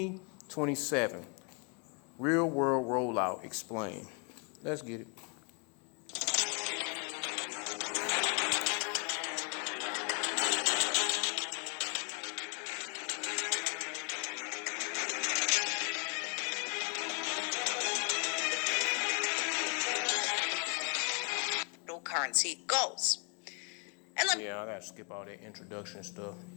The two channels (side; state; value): right; quieter; 37.5 dB